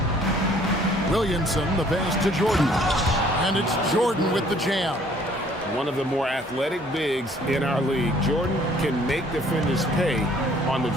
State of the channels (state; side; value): normal; both; correlation 0.59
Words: Williamson, the pass to Jordan. And it's Jordan with the jam. One of the more athletic bigs in our league. Jordan can make defenders pay on the